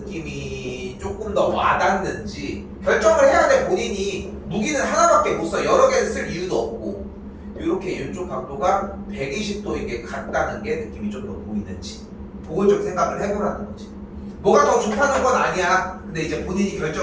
조금 더 와닿는지 결정을 해야 돼. 본인이 무기는 하나밖에 못 써. 여러 개를 쓸 이유도 없고, 이렇게 이쪽 각도가 120도에게 같다는 게 느낌이 좀 더 보이는지 그걸 좀 생각을 해보라는 거지. 뭐가 더 좋다는 건 아니야. 근데 이제 본인이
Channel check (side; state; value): both; identical; correlation 1.00